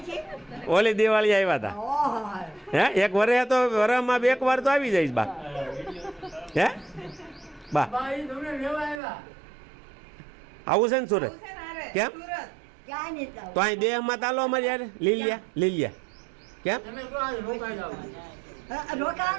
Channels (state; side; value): drops out; left; at 9.0 s